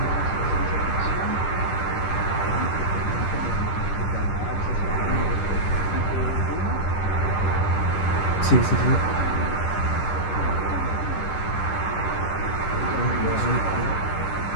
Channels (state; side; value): late; right; 10 ms